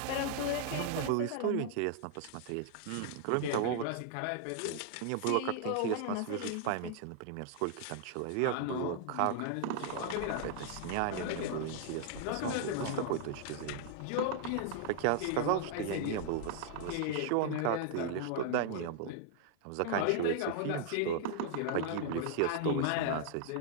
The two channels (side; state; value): both; different; correlation -0.01